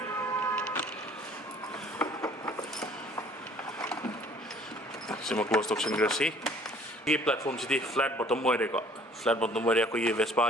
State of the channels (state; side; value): normal; both; correlation 0.54